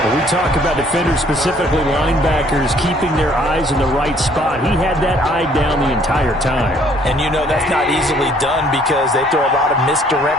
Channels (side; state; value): both; normal; correlation 0.61